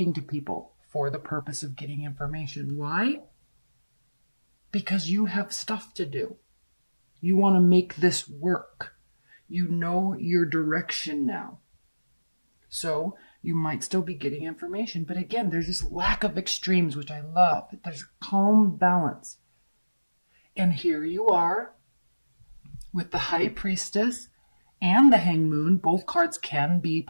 to people for the purpose of getting information. Why? Because you have stuff to do. You want to make this work. You know your direction now. So you might still be getting information. But again, there's this lack of extremes, which I love. There's calm balance. And here you are with the High Priestess and the Hanged Moon. Both cards can be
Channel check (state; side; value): inverted; both; correlation -1.00